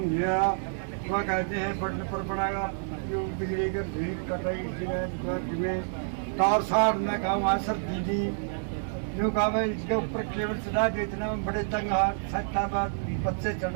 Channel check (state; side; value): silent; left; digital silence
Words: है। वह कहते हैं बढ़ने पर पड़ेगा जो बिजली के भीड़ कटाई में तार सार में कहा वहाँ सर दीदी यूँ कहा मैं इसके ऊपर केबल चढ़ा दे, इतना में बड़े तंग सकता बाद बच्चे